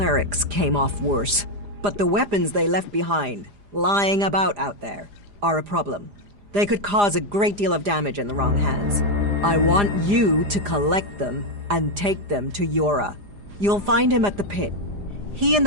came off worse. But the weapons they left behind, lying about out there, are a problem. They could cause a great deal of damage in the wrong hands. I want you to collect them and take them to Yora. You'll find him at the pit. He and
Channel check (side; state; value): left; late; 4.9 ms